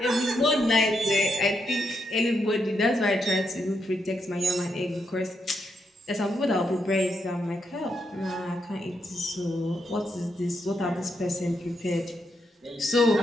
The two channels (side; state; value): both; normal; correlation 0.80